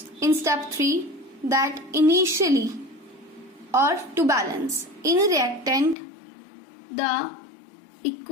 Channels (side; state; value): right; drops out; at 6.0 s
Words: in step 3 that initially or to balance in reactant the